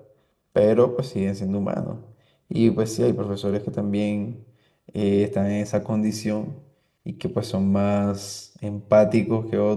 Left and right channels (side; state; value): both; identical; correlation 1.00